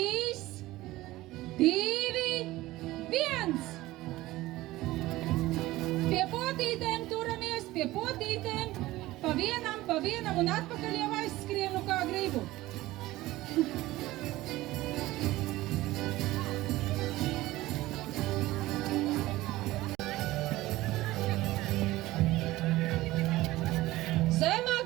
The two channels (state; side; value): quieter; left; 17.6 dB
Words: 2, 1! Pie potītēm turamies, pie potītēm, pa vienam un atpakaļ jau aizskrienu kā gribu. Zemāk,